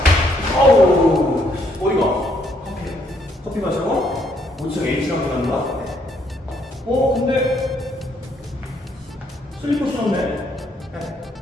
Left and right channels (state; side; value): normal; both; correlation 0.70